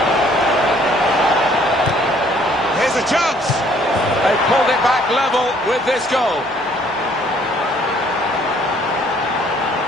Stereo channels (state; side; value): normal; both; correlation 0.61